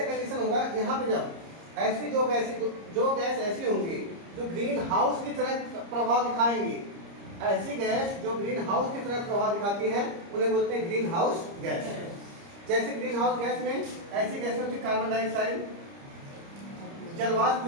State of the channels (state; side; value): late; left; 30 ms